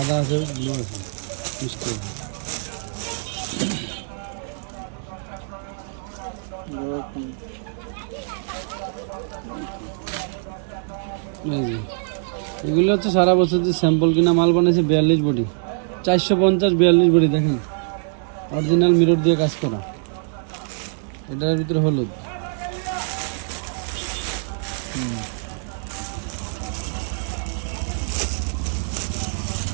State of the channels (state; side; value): silent; left; digital silence